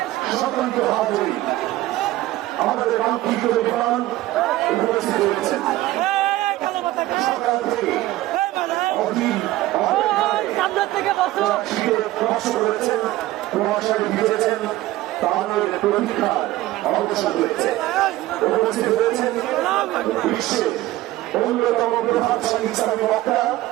সকলকে হাজির, আমাদের কাঙ্ক্ষিত বিমান উপস্থিত হয়েছেন। সকাল থেকে অধীর কষ্ট করেছেন, প্রভাষায় ভিজেছেন, তাদের প্রতীক্ষার অবসান হয়েছে। উপস্থিত হয়েছেন বিশ্বের অন্যতম প্রভাবশালী ইসলামী বক্তা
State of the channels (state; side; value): quieter; left; 16.6 dB